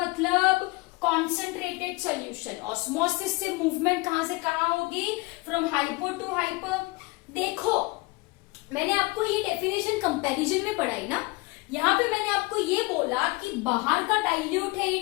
कॉन्सेंट्रेटेड सॉल्यूशन. ऑस्मोसिस से मूवमेंट कहां से कहां होगी? From hypo to hyper. देखो मैंने आपको ये डेफिनेशन कंपैरिजन में पढ़ाई ना, यहाँ पे मैंने आपको ये बोला कि बाहर का डाइल्यूट है,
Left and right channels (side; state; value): right; quieter; 24.9 dB